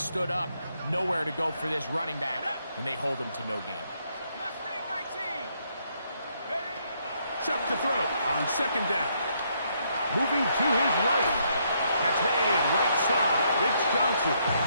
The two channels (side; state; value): both; inverted; correlation -0.73